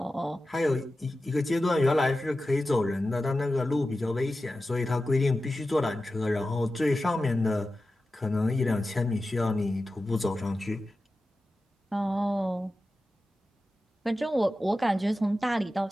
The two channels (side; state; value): both; normal; correlation 0.93